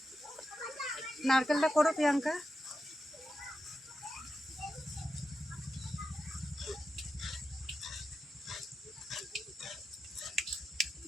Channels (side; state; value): both; normal; correlation 0.89